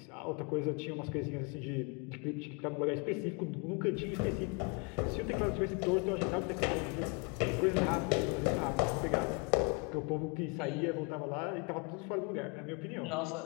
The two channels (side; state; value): right; quieter; 32.4 dB